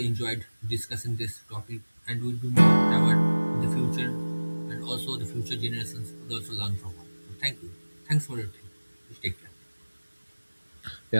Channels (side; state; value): both; inverted; correlation -1.00